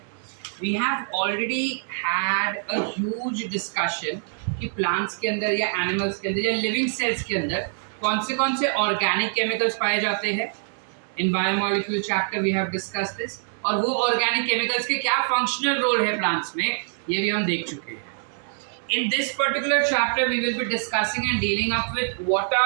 We have already had a huge discussion कि प्लांट्स के अंदर या एनिमल्स के अंदर या लिविंग सेल्स के अंदर कौन से ऑर्गेनिक केमिकल्स पाए जाते हैं। In biomolecule chapter we have discussed this, और वो ऑर्गेनिक केमिकल्स के क्या फंक्शनल रोल है प्लांट्स में, ये भी हम देख चुके हैं। In this particular chapter we will be discussing and dealing up with what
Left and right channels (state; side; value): silent; left; digital silence